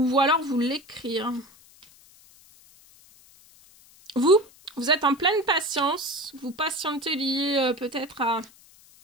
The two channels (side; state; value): left; noise; hiss, 26 dB below the sound